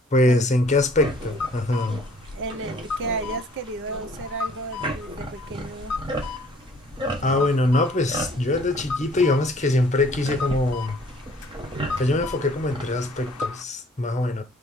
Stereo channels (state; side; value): normal; both; correlation 0.57